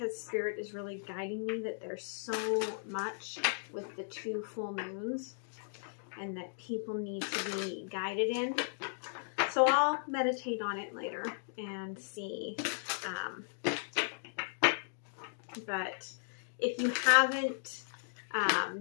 Spirit is really guiding me that there's so much with the 2 full moons and that people need to be guided in. So I'll meditate on it later and see. But if you haven't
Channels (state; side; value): silent; right; digital silence